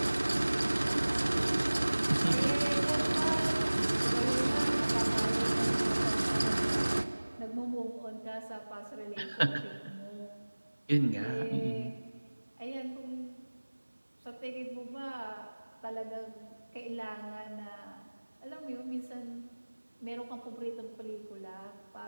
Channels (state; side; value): inverted; both; correlation -1.00